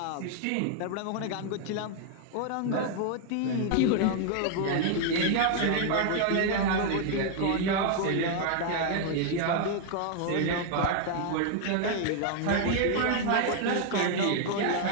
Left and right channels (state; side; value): different; both; correlation 0.00